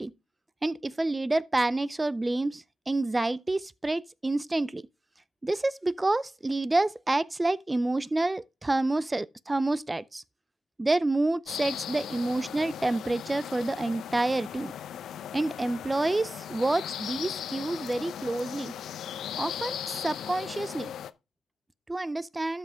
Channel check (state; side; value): normal; both; correlation 0.96